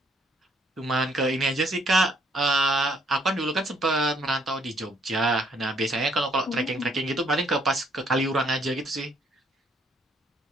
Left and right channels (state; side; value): normal; both; correlation 0.67